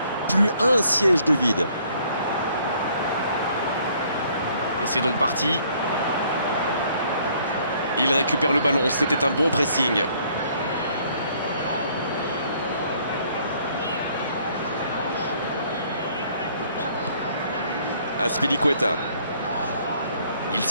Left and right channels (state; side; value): inverted; both; correlation -0.63